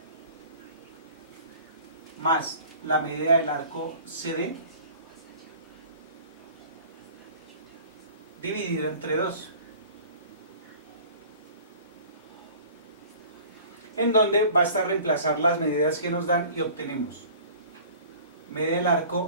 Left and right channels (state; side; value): inverted; both; correlation -0.46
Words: más la medida del arco CD dividido entre 2. En donde basta reemplazar las medidas que nos dan y obtenemos medida del arco